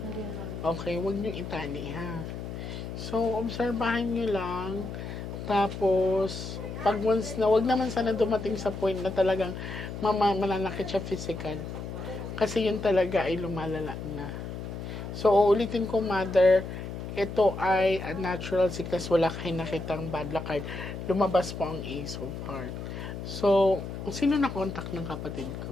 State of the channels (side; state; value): left; noise; hum, 7 dB below the sound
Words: naman. Okay, huwag niyo itali ha. So, obserbahan niyo lang. Tapos, pag once na, wag naman sana dumating sa point na talagang mananakit siya physical. Kasi yun talaga ay lumalala na. So, uulitin ko, mother, ito ay a natural sickness. Wala kayo nakitang bad luck card. Lumabas po ang Ace of Hearts. So, sino na contact ng kapatid